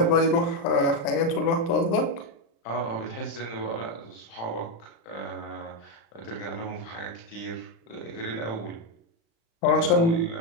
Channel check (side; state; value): right; late; 35 ms